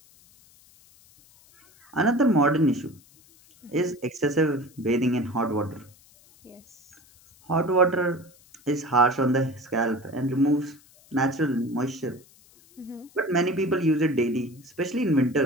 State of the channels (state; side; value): noise; left; hiss, 28 dB below the sound